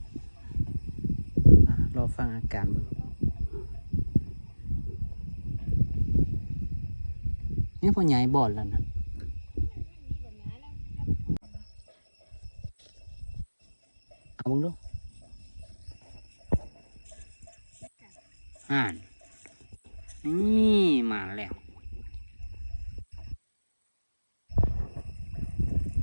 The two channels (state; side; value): inverted; both; correlation -1.00